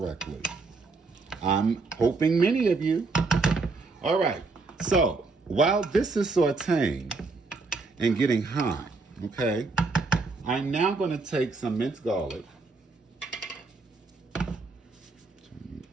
I'm hoping many of you. All right. So while this is sauteing and getting hot, okay, I'm now going to take some minced garlic.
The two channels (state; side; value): quieter; left; 3.9 dB